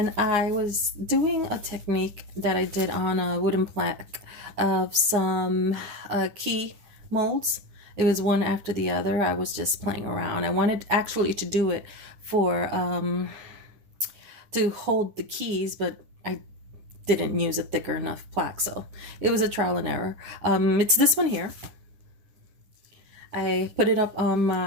I was doing a technique that I did on a wooden plaque of some key molds. It was one after the other. I was just playing around. I wanted actually to do it for to hold the keys, but I didn't use a thicker enough plaque, so it was a trial and error. It's this one here. I put it up on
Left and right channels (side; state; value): left; late; 9.4 ms